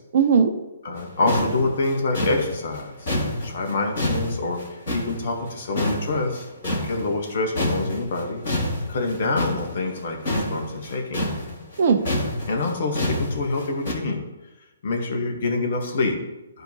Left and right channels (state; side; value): inverted; both; correlation -0.61